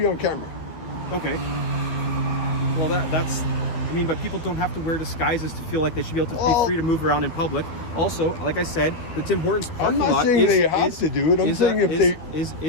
on camera. okay. Well, that's. I mean, but people don't have to wear disguises to feel like they should be able to be free to move around in public. Also, like I said, the Tim Hortons parking lot I'm not saying they have to do it. I'm saying if they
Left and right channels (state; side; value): late; right; 12 ms